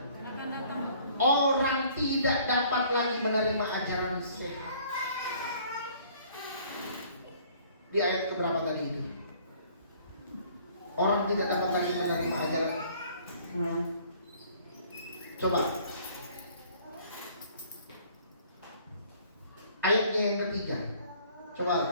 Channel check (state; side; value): inverted; both; correlation -0.56